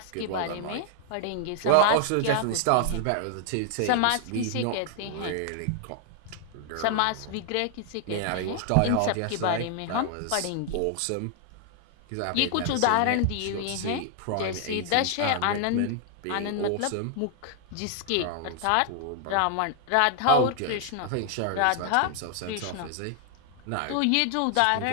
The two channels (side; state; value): both; different; correlation 0.00